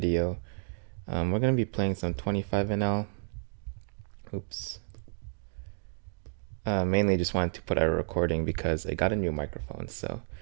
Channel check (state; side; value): silent; left; digital silence